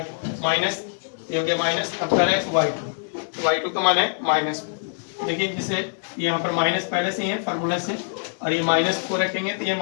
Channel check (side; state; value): right; silent; 62 dB below the other